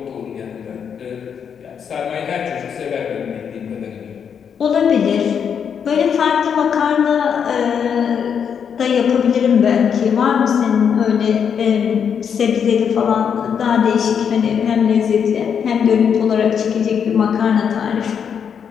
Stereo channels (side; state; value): right; quieter; 7.4 dB